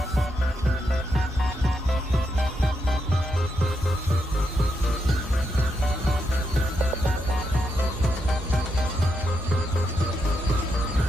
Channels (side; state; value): both; normal; correlation 0.82